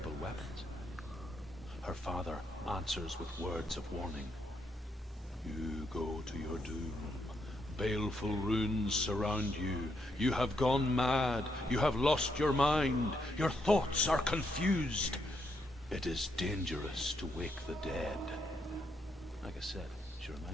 weapons. Her father answers with words of warning. You go to your doom. Baleful runes surround you. You have gone mad. You have lost your mind. Your thoughts are confused. It is dangerous to wake the dead. Like I said, she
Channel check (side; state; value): both; normal; correlation 0.78